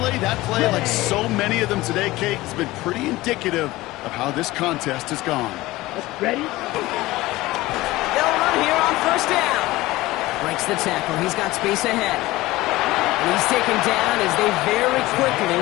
that play, like so many of them today, Kate, has been pretty indicative of how this contest has gone. Ready? They'll run here on 1st down. Breaks the tackle. He's got space ahead. And he's taken down as they very quickly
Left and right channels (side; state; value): right; quieter; 18.6 dB